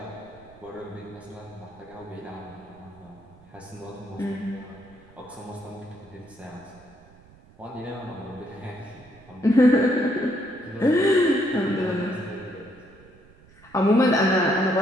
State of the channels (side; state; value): right; noise; rumble, 25 dB below the sound